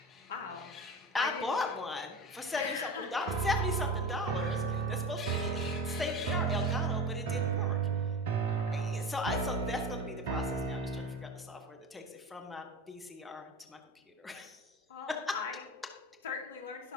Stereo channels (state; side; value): normal; both; correlation 0.30